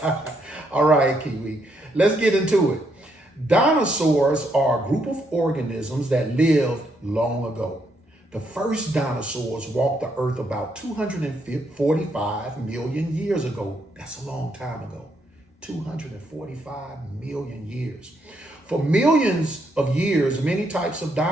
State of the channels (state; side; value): normal; both; correlation 0.75